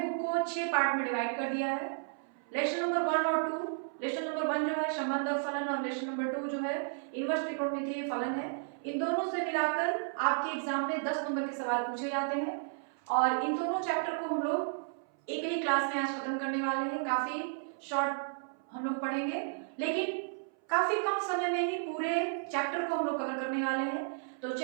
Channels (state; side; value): silent; left; 56 dB below the other